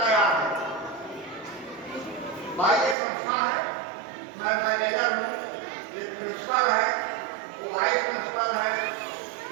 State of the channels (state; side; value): drops out; left; at 3.0 s